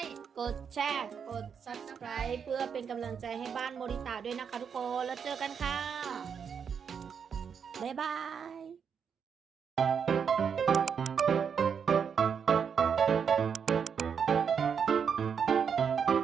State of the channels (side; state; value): left; quieter; 7.0 dB